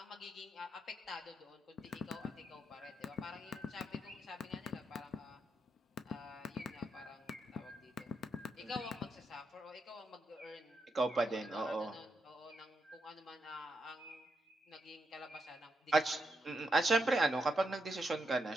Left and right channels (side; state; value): both; normal; correlation 0.82